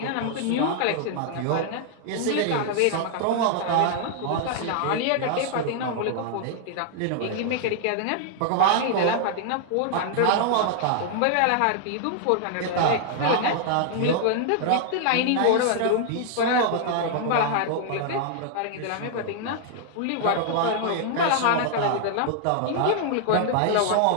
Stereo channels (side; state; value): both; different; correlation -0.01